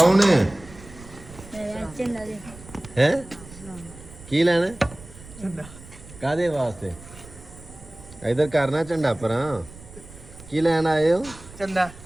है हैं की लेना कादे वास्ते इधर करना झंडा पर की लैन आए हो चंदा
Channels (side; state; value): right; noise; rumble, 18 dB below the sound